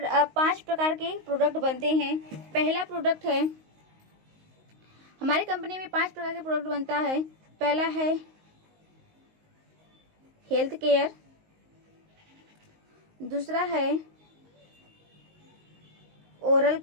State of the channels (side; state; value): left; late; 19 ms